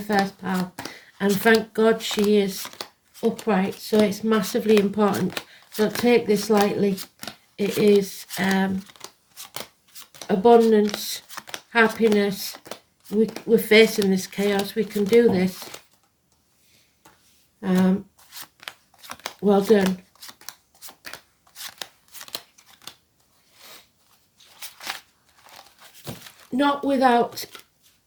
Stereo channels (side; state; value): both; identical; correlation 1.00